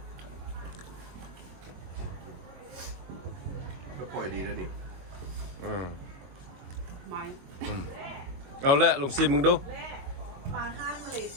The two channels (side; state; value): left; late; 22 ms